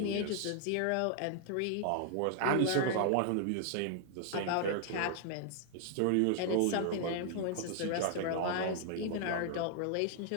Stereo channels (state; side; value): different; both; correlation -0.01